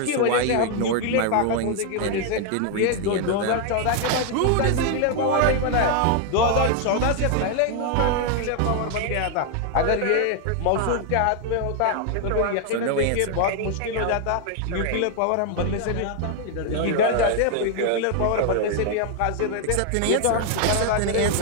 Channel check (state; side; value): different; both; correlation 0.00